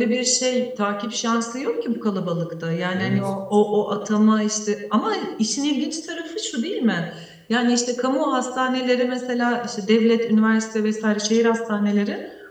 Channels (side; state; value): both; identical; correlation 1.00